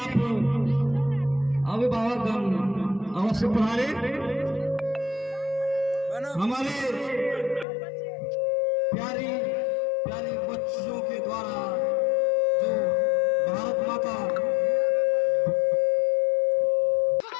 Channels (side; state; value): right; drops out; at 7.7 s